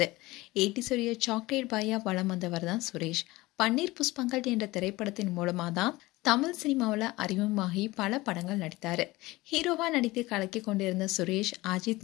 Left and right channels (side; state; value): right; quieter; 20.2 dB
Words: 80ஸ் உடைய சாக்லேட் பாயா வலம் வந்தவர் தான் சுரேஷ். பன்னீர் புஷ்பங்கள் என்ற திரைப்படத்தின் மூலமா தான் தமிழ் சினிமாவில் அறிமுகமாகி பல படங்கள் நடித்தாரு. ஹீரோவா நடித்து கலக்கி கொண்டிருந்த சுரேஷ்